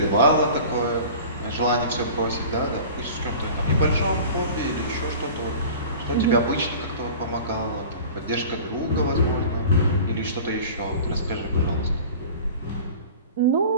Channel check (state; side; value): inverted; both; correlation -0.40